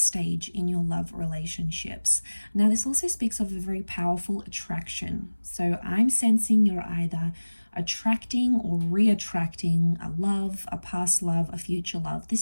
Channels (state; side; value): inverted; both; correlation -1.00